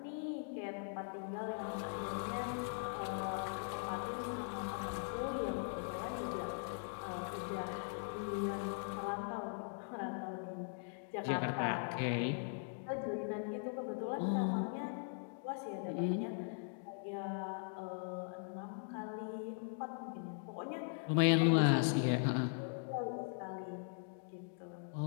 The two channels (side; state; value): right; silent; digital silence